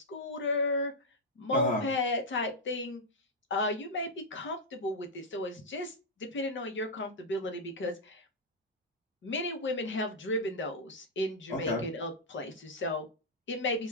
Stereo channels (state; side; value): normal; both; correlation -0.04